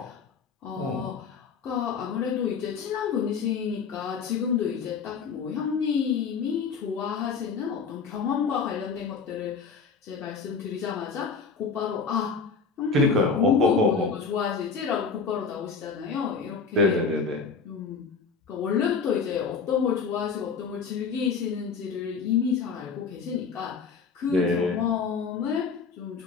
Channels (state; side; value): quieter; right; 5.3 dB